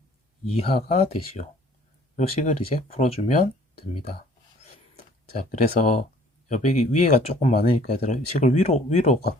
이하가 되시오. 요 식을 이제 풀어주면 됩니다. 자, 그래서 여백이 위에가 조금 많으니까 얘들아 식을 위로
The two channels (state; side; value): normal; both; correlation 0.55